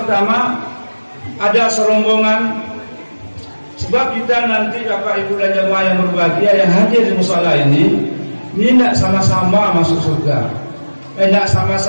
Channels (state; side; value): inverted; both; correlation -1.00